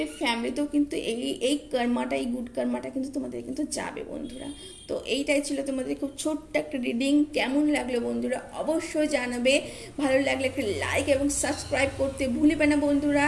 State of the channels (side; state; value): both; identical; correlation 1.00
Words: ফ্যামিলিতেও কিন্তু এই কর্মাটা, এই গুড কর্মাটা কিন্তু তোমাদের কিন্তু যাবে বন্ধুরা। তো এইটাই ছিল তোমাদের খুব ছোট্ট একটা রিডিং। কেমন লাগলো বন্ধুরা অবশ্যই জানাবে, ভালো লাগলে একটা লাইক এবং সাবস্ক্রাইব করতে ভুলবে না বন্ধুরা।